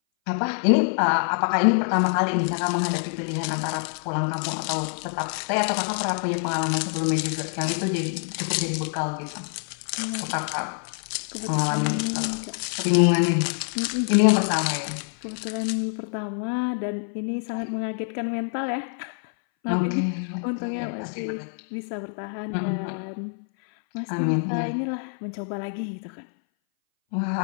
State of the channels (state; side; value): silent; right; 59 dB below the other